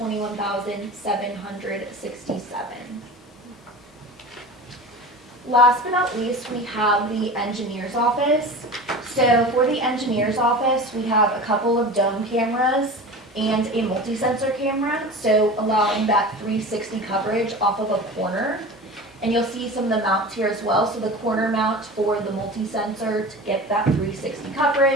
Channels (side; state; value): both; normal; correlation 0.34